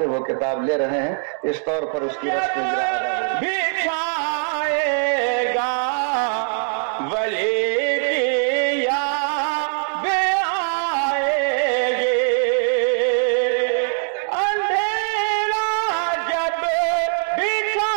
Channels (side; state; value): left; silent; 65 dB below the other